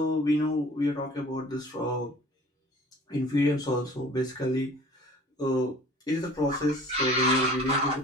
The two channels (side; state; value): both; normal; correlation 0.48